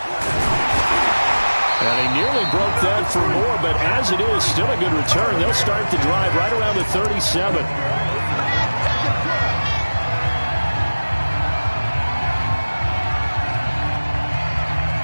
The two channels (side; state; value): both; inverted; correlation -1.00